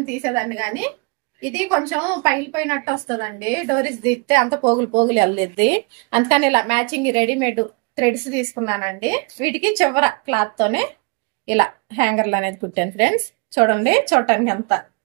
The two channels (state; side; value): quieter; left; 31.2 dB